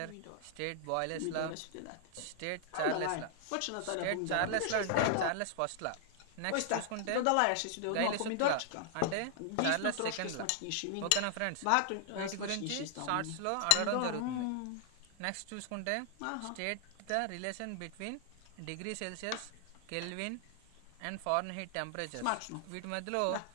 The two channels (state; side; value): different; both; correlation -0.01